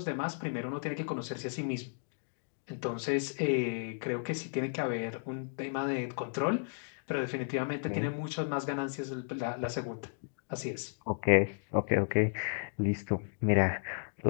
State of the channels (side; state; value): right; silent; digital silence